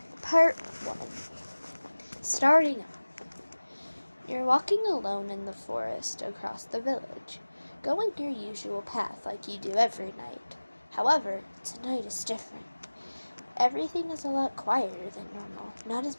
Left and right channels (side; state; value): both; inverted; correlation -1.00